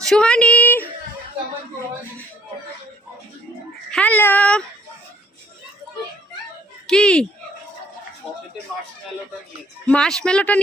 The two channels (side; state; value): both; normal; correlation 0.63